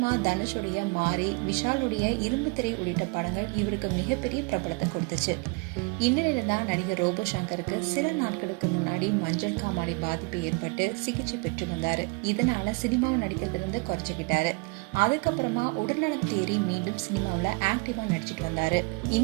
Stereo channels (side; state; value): left; quieter; 29.4 dB